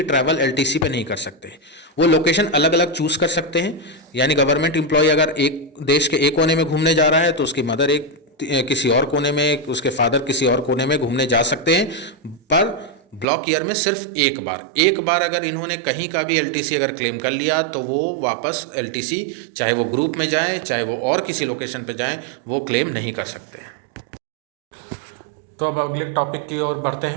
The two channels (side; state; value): left; drops out; at 13.2 s